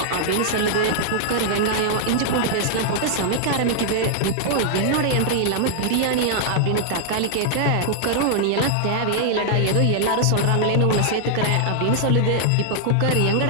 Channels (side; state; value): both; different; correlation -0.01